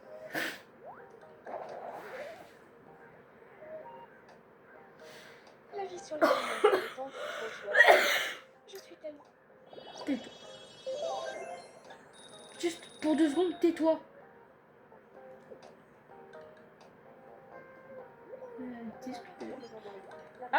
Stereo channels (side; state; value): both; identical; correlation 1.00